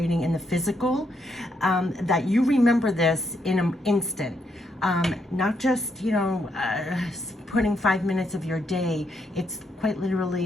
in the physical, that you remember this in an instant. Not just, putting 5 minutes of your day. It's quite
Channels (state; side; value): normal; both; correlation 0.77